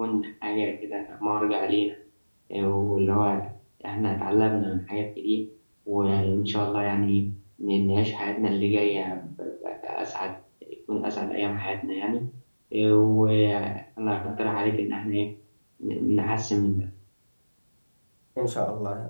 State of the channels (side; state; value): both; inverted; correlation -1.00